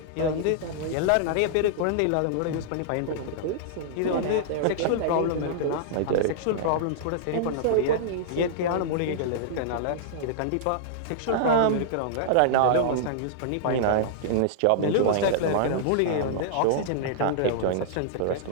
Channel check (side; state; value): both; different; correlation -0.02